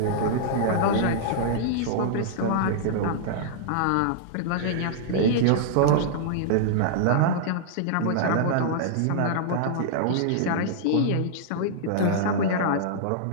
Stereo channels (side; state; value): both; different; correlation -0.02